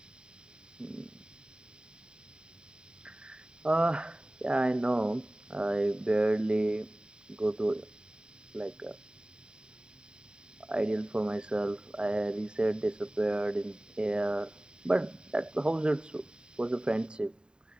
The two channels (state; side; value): late; left; 0.049 ms